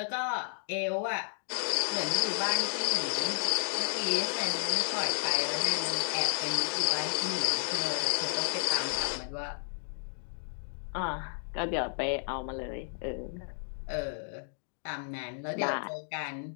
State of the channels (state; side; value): silent; right; digital silence